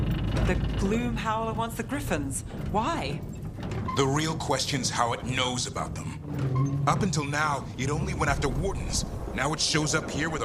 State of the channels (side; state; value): both; identical; correlation 1.00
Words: The Gloom Howler wants the Griffins. Why? The real question's how it knows about them. Up until now, it only went after Wardens. Now it shows up here with